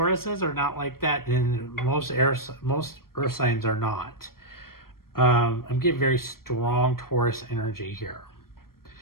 are not like that, and most earth signs are not. I'm getting very strong Taurus energy here.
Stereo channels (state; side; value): late; right; 0.93 ms